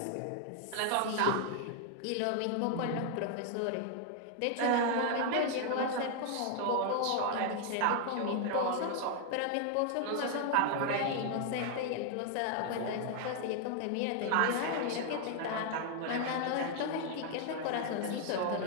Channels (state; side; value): different; both; correlation 0.00